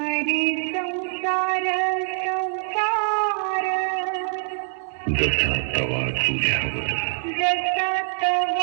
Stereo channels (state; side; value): silent; left; digital silence